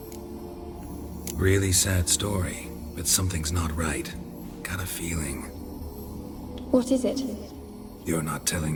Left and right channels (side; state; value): both; identical; correlation 1.00